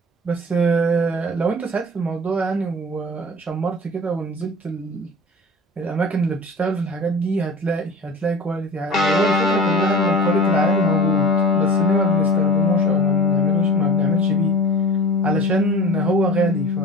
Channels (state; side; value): normal; both; correlation 0.37